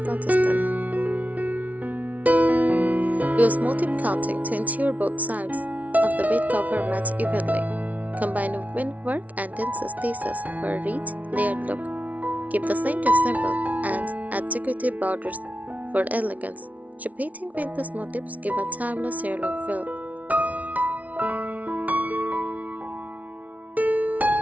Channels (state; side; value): late; left; 0.070 ms